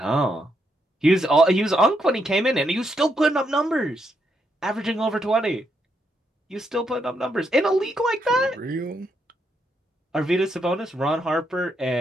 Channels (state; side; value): normal; both; correlation 0.78